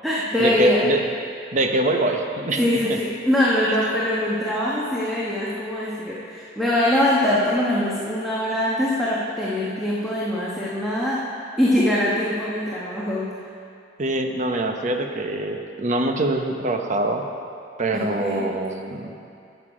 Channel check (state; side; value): normal; both; correlation 0.45